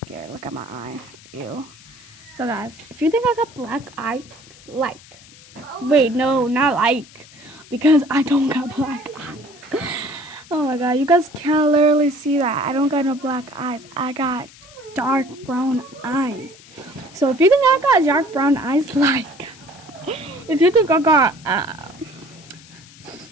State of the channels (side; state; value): left; noise; hiss, 22 dB below the sound